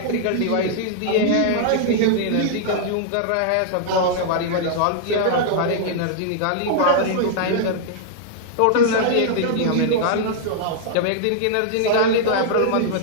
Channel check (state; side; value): different; both; correlation -0.01